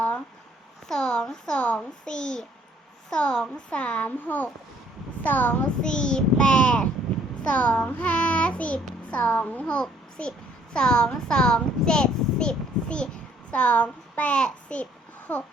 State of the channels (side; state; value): both; normal; correlation 0.63